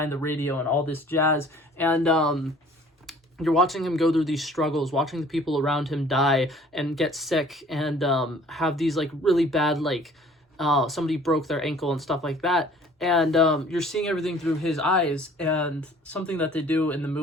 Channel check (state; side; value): normal; both; correlation 0.53